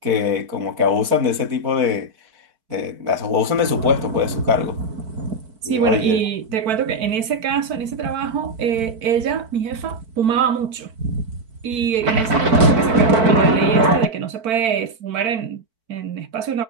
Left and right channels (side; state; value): left; late; 4.5 ms